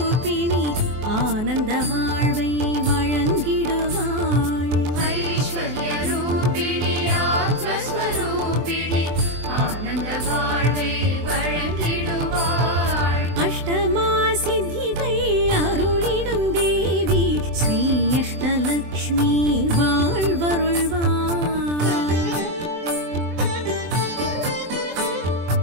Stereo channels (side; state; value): left; late; 24 ms